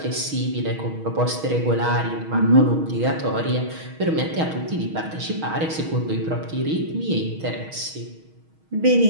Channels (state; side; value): late; left; 6.3 ms